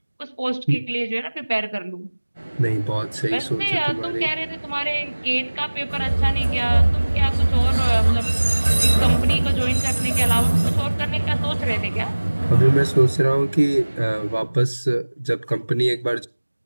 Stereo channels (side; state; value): both; inverted; correlation -1.00